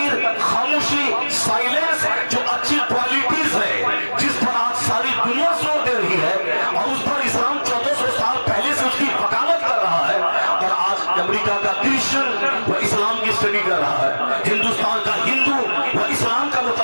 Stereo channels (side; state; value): both; inverted; correlation -1.00